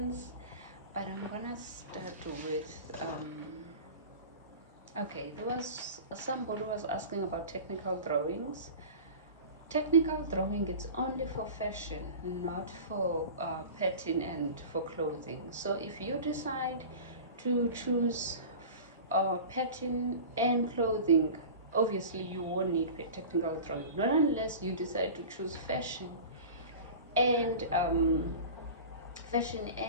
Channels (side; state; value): both; inverted; correlation -0.35